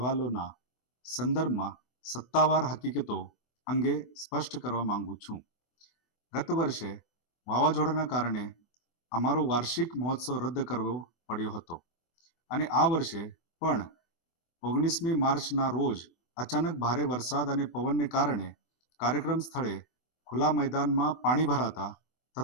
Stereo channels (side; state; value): right; late; 24 ms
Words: સંદર્ભમાં સત્તાવાર હકીકતો અંગે સ્પષ્ટ કરવા માંગુ છું. ગત વર્ષે વાવાઝોડાના કારણે અમારો વાર્ષિક મહોત્સવ રદ કરવો પડ્યો હતો અને આ વર્ષે પણ 19મી માર્ચના રોજ અચાનક ભારે વરસાદ અને પવનને કારણે કાર્યક્રમ સ્થળે ખુલ્લા મેદાનમાં પાણી ભરાતા